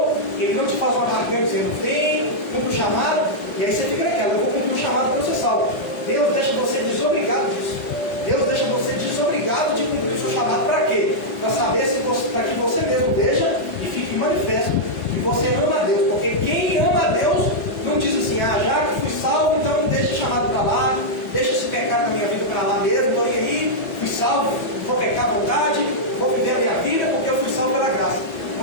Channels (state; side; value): late; right; 4.7 ms